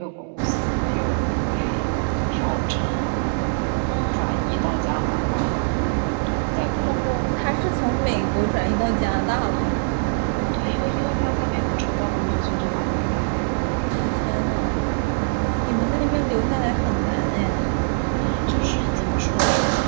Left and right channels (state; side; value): silent; left; digital silence